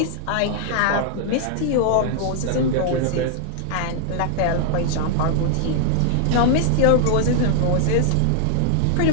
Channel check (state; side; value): different; both; correlation 0.00